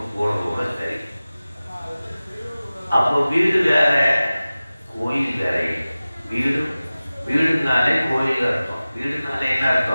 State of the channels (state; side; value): inverted; both; correlation -0.97